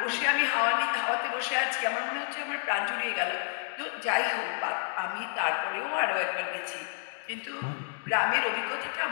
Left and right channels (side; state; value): right; silent; 58 dB below the other